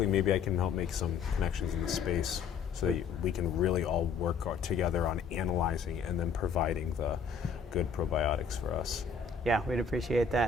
maybe I can help make some connections in the space so that we can really all work together on analyzing and then providing the good probiotics for us. Yeah, we'd appreciate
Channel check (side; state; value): right; quieter; 5.7 dB